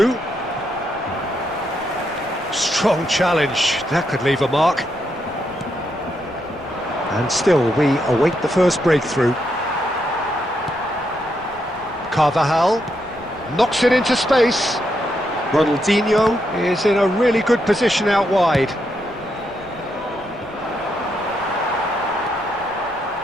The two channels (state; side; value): noise; left; rumble, 23 dB below the sound